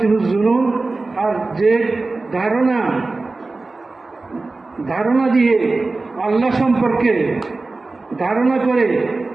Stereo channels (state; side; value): quieter; left; 3.5 dB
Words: জুনুন, আর যে ধারণা দিয়ে আল্লাহ সম্পর্কে ধারণা করে